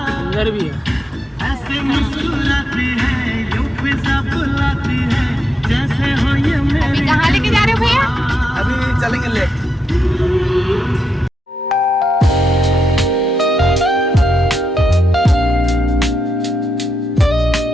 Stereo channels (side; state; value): both; normal; correlation 0.84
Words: सिंगर भी है। अभी कहाँ लेके जा रहे हो भैया? अभी चलेंगे लेक।